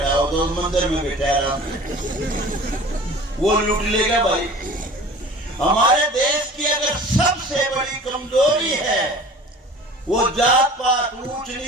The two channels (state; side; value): normal; both; correlation 0.43